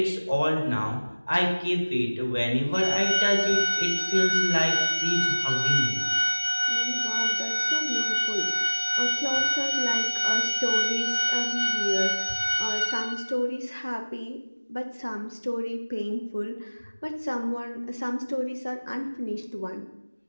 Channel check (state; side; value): inverted; both; correlation -1.00